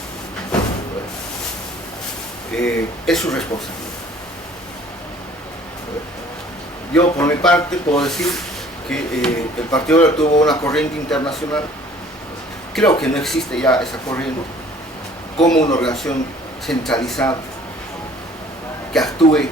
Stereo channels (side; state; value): both; normal; correlation 0.54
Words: Es su responsabilidad. Yo por mi parte puedo decir que el Partido Obrero tuvo una corriente internacional. Creo que no existe ya esa corriente como una organización centralizada que actúe